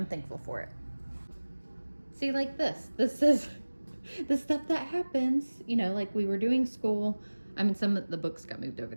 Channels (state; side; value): inverted; both; correlation -1.00